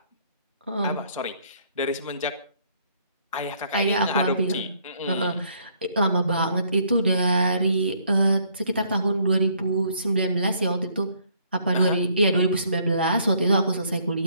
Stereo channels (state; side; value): inverted; both; correlation -0.66